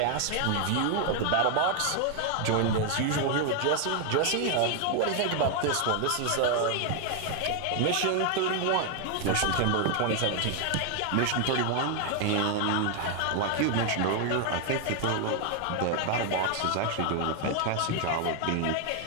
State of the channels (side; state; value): both; different; correlation 0.00